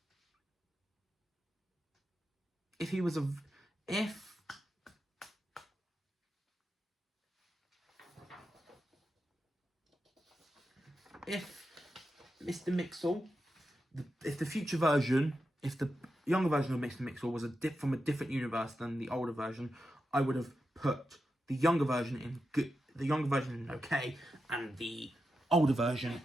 Mr. Mixel, if the future version, if the younger version of Mr. Mixel was from a different universe than the older version, I would have put the younger version in good, okay, and the older version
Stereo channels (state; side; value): normal; both; correlation 0.88